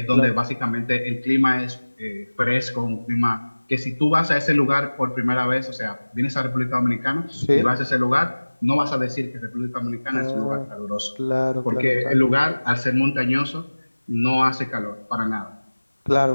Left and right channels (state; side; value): inverted; both; correlation -1.00